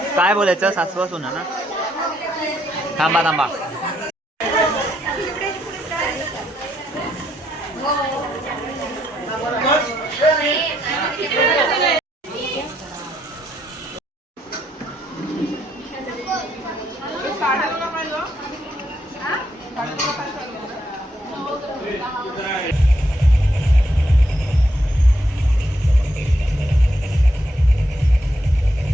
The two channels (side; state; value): both; normal; correlation 0.75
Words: काय बोलायचं सासवा सुना ना. थांबा थांबा.